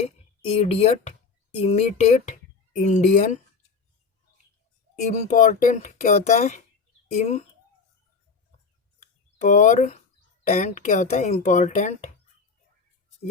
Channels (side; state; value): right; quieter; 5.0 dB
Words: इडियट, इमिटेट, इंडियन, इम्पॉर्टेंट क्या होता है? इम्पोर्टेंट क्या होता है? इम्पॉर्टेंट,